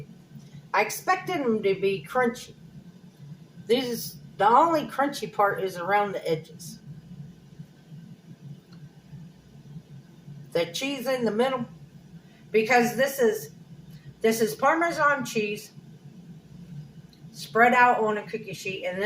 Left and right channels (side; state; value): both; identical; correlation 1.00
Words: I expected them to be crunchy. The only crunchy part is around the edges. The cheese in the middle. Because this is Parmesan cheese spread out on a cookie sheet, and